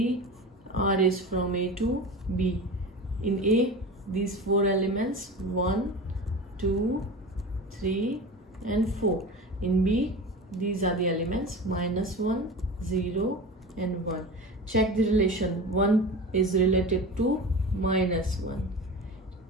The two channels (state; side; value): normal; both; correlation 0.31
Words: R is from A to B. In A, these 4 elements 1, 2, 3 and 4. In B, these are the elements -1, 0 and 1. Check the relation. 1 is related to -1.